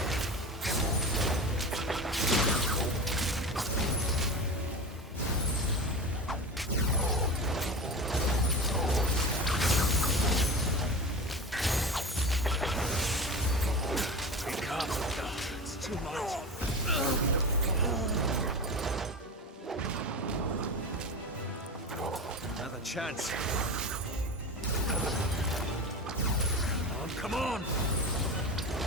It's too much. Another chance. Come on!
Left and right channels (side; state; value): both; normal; correlation 0.28